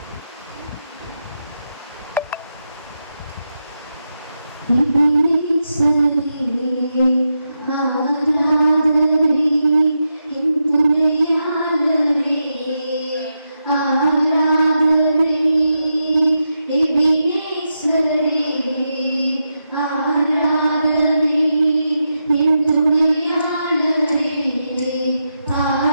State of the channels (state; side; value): inverted; both; correlation -0.86